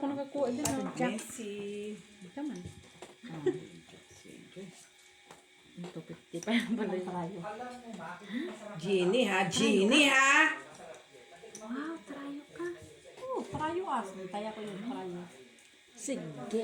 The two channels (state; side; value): identical; both; correlation 1.00